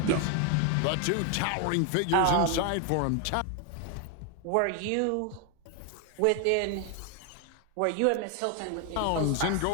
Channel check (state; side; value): different; both; correlation 0.01